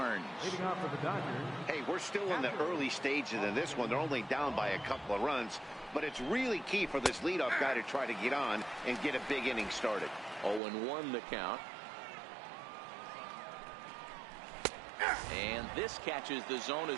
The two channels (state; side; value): drops out; left; at 10.6 s